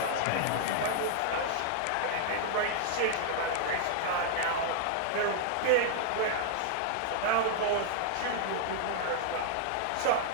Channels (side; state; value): both; different; correlation -0.01